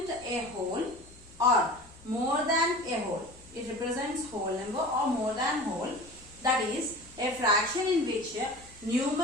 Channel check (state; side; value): noise; left; hum, 24 dB below the sound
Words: a whole or more than a whole. It represents whole number or more than whole. That is a fraction in which